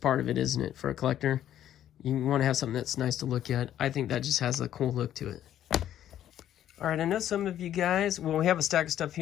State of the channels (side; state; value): right; quieter; 11.3 dB